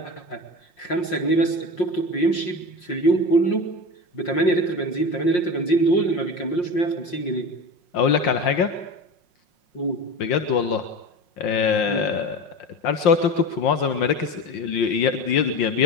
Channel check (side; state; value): right; late; 5.6 ms